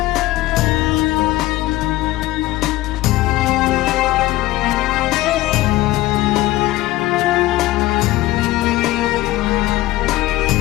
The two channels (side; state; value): right; quieter; 17.2 dB